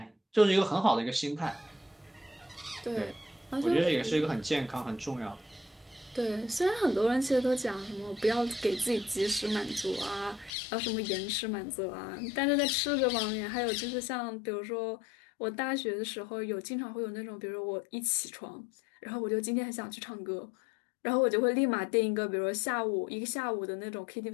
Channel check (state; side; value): drops out; right; at 10.5 s